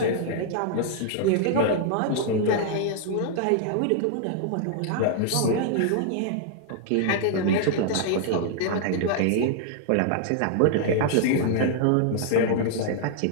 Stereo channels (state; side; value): different; both; correlation -0.01